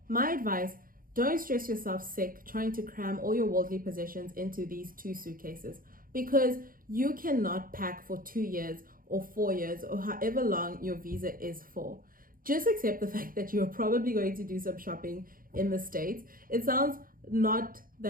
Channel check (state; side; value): late; left; 0.41 ms